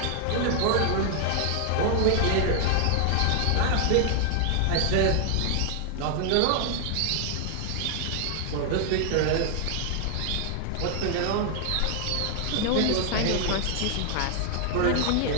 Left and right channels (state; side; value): different; both; correlation 0.00